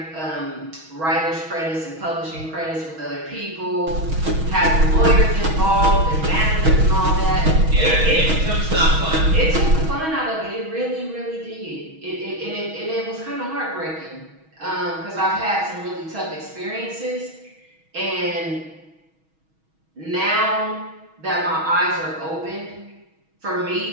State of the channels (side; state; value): left; late; 6.2 ms